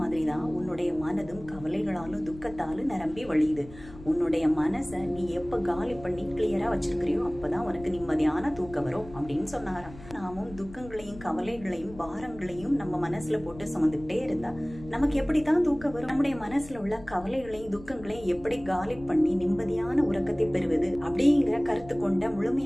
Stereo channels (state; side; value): noise; left; rumble, 18 dB below the sound